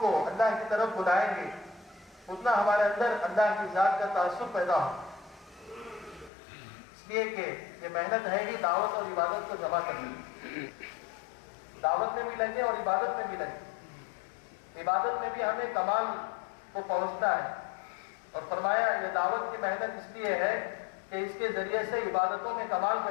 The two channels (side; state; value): right; drops out; at 6.3 s